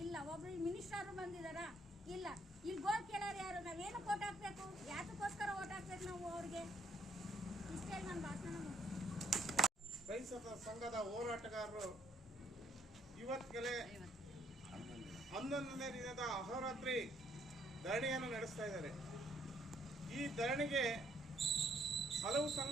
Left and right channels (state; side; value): normal; both; correlation 0.68